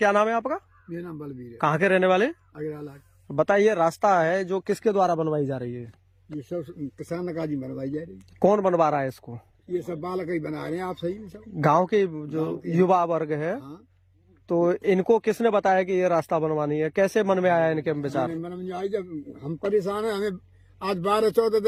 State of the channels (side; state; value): both; identical; correlation 1.00